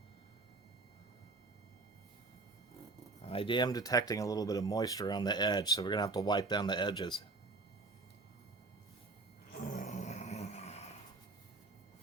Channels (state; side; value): quieter; left; 3.6 dB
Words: I am detecting a little bit of moisture on the edge, so we're going to have to wipe down the edges.